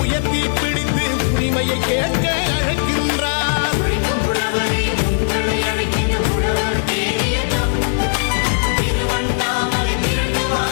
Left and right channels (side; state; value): right; silent; digital silence